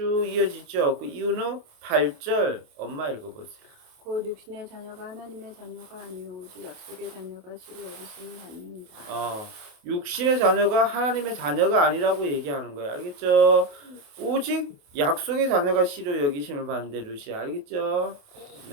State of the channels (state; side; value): late; left; 28 ms